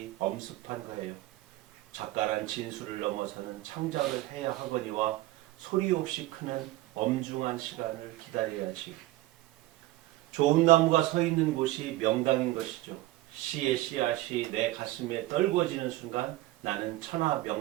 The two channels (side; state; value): left; quieter; 17.1 dB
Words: 엄습한 거예요. 작가란 진수를 넘어서는 창작을 해야 하거니와 소리 없이 크는 엄중한 시간을 기다려야지. 좋은 나무가 서 있는 곳이 명당인 것이죠. 시의 씨앗이 내 가슴에 떨궈지는 순간 나는 천하